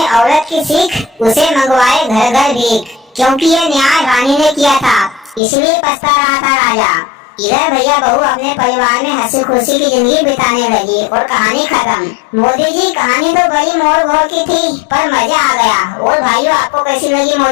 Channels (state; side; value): drops out; right; at 5.4 s